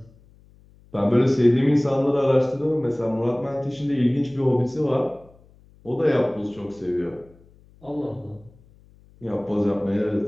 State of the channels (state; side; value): noise; left; hum, 28 dB below the sound